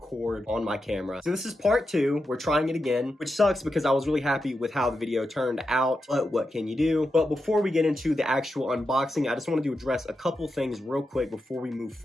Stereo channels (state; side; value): normal; both; correlation 0.88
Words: on my camera. So this is part two. We're trying it again, which sucks because I was really happy with how the video turned out, but what can you do? But before we get into the actual unboxing, I just wanted to address a couple things real quick before we move